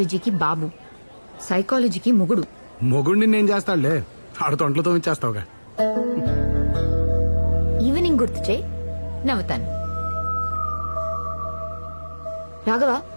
బాబు, సైకాలజీకి మొగుడు. మొగుడిని నేను చేస్తాడులే, ఆడుతో ఒంట్లతో ఇచ్చేస్తావుగా. ఈవినింగ్ గుర్తు చేయి, నవ్వుతాను. రాఘవ,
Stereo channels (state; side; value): inverted; both; correlation -1.00